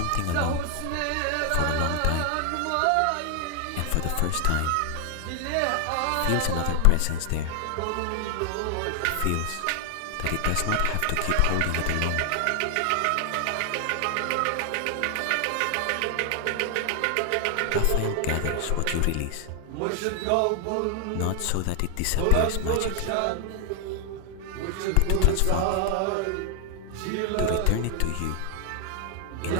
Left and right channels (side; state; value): both; different; correlation 0.00